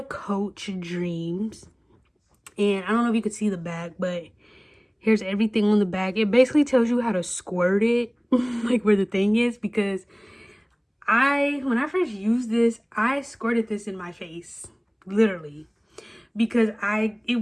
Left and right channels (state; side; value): identical; both; correlation 1.00